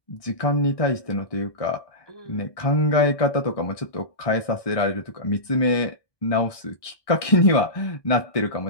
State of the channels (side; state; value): right; late; 1.2 ms